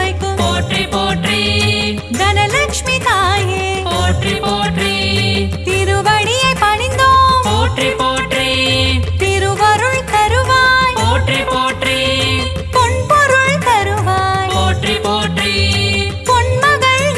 போற்றி போற்றி தனலட்சுமி தாயே போற்றி போற்றி திருவடியை பணிந்தோம் போற்றி போற்றி திருவருள் தருவாய் போற்றி போற்றி பொன்பொருள் தருவாய் போற்றி போற்றி பொன்மகள்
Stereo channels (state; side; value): identical; both; correlation 1.00